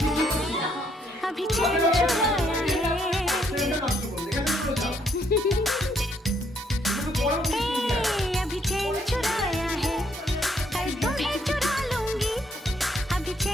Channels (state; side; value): normal; both; correlation 0.70